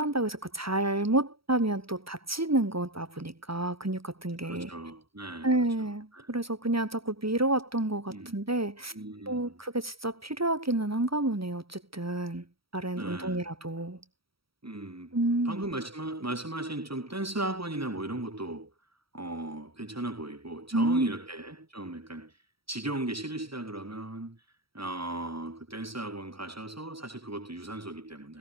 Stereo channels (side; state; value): left; late; 0.75 ms